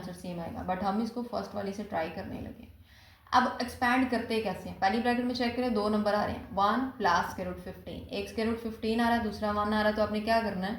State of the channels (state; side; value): identical; both; correlation 1.00